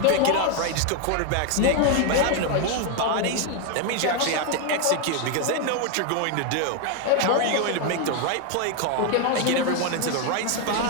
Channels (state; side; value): different; both; correlation 0.01